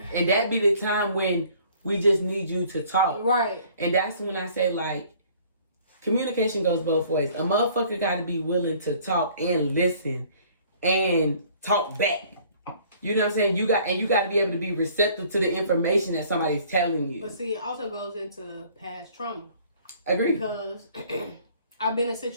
And that be the time when we just need you to talk. Right. And that's when I say, like, communication goes both ways. A motherfucker got to be willing to talk and listen and talk back. You know what I'm saying? You got to be able to be receptive to the information that somebody's telling you. But see, it also goes into past trauma. Agree. Because I've been in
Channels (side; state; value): both; inverted; correlation -0.56